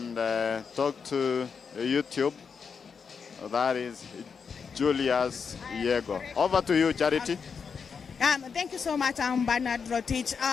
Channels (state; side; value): quieter; right; 6.0 dB